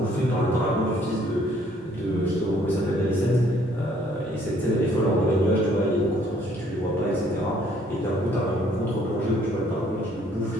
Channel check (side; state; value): both; normal; correlation 0.63